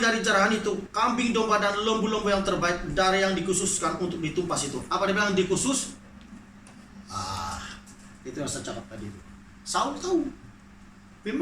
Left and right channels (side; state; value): both; identical; correlation 1.00